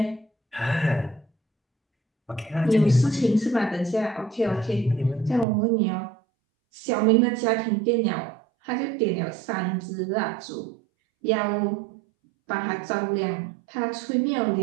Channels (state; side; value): drops out; left; at 5.5 s